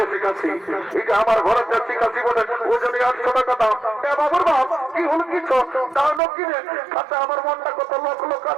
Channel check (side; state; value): left; drops out; at 6.2 s